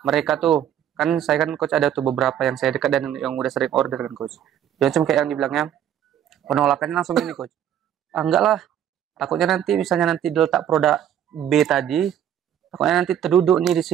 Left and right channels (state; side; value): quieter; left; 10.1 dB